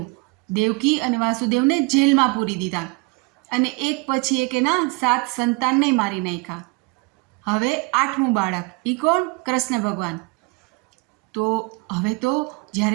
દેવકી અને વાસુદેવને જેલમાં પૂરી દીધા અને એક પછી એક એના 7 સંતાનને મારી નાખ્યા. હવે 8મું બાળક, એ કોણ? કૃષ્ણ ભગવાન. તો હવે તો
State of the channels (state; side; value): quieter; left; 27.9 dB